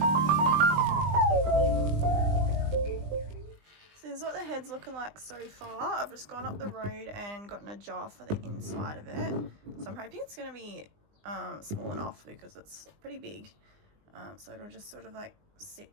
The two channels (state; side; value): late; left; 20 ms